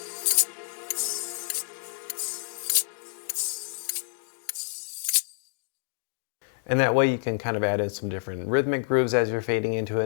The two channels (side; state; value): right; silent; digital silence